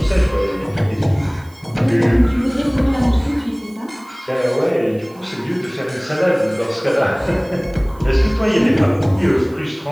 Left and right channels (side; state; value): right; noise; hiss, 29 dB below the sound